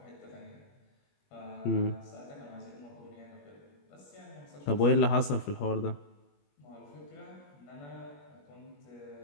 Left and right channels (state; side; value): late; right; 21 ms